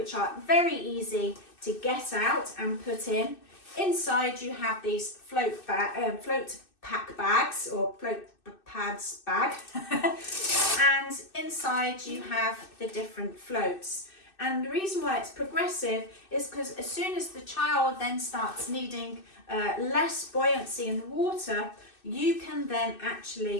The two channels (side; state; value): right; late; 2.6 ms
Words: are very easy to get out and put in. Inside you have these float pack bags or float pads bag and inside you have the different floats. And the reason why it's progressive is because as soon as the child then starts needing less buoyancy in the water, you can then